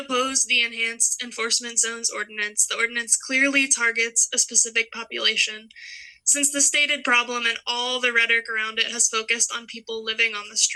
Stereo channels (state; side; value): identical; both; correlation 1.00